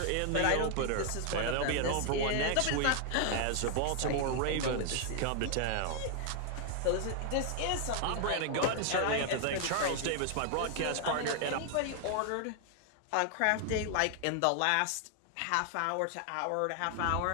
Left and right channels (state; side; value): different; both; correlation 0.00